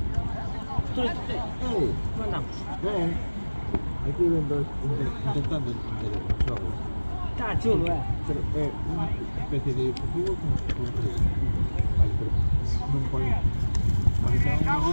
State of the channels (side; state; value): both; inverted; correlation -1.00